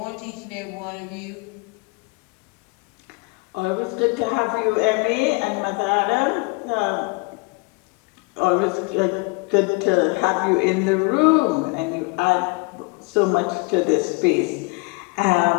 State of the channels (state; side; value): quieter; right; 28.2 dB